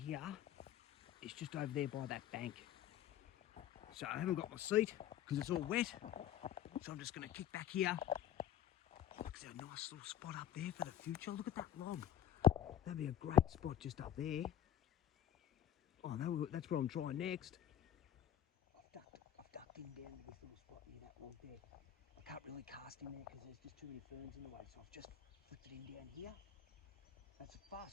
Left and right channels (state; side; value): quieter; right; 10.7 dB